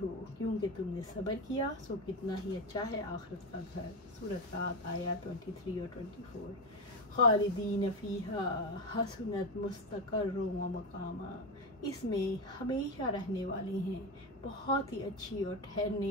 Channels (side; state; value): both; normal; correlation 0.15